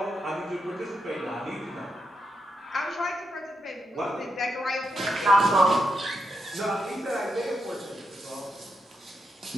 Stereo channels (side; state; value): both; normal; correlation 0.83